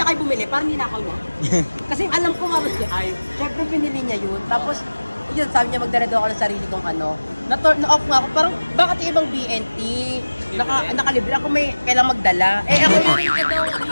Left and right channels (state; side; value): inverted; both; correlation -1.00